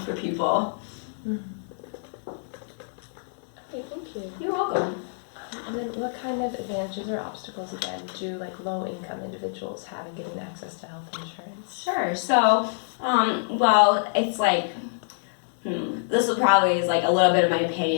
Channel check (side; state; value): right; silent; digital silence